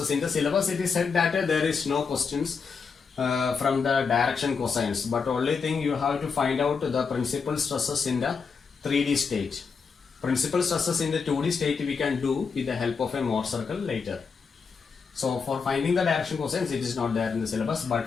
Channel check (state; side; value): quieter; right; 5.5 dB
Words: In the syllabus it is said that there is no questions from the direction cosines, but only thing you have to find out the principal stresses in the 3D state. Principal stresses in the 2D state we can do with the help of a Mohr circle later. So for finding the direction cosines it is not there in the syllabus, but